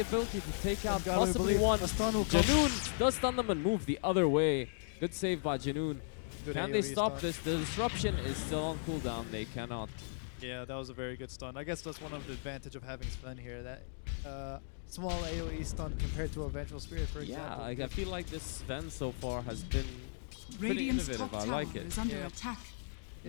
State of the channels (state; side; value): silent; right; digital silence